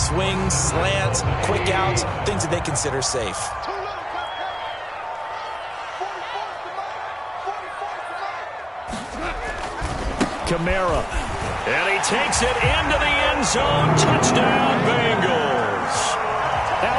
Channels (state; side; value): identical; both; correlation 1.00